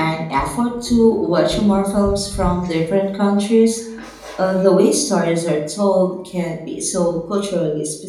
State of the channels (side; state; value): both; identical; correlation 1.00